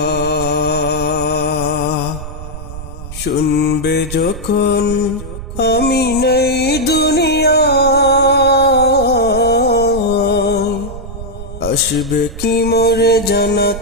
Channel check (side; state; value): right; noise; rumble, 10 dB below the sound